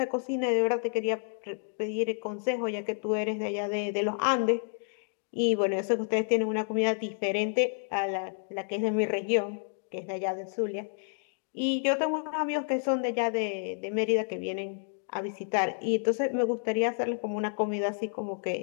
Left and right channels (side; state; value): right; silent; digital silence